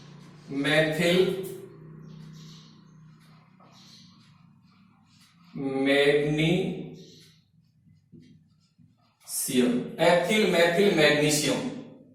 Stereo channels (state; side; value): identical; both; correlation 1.00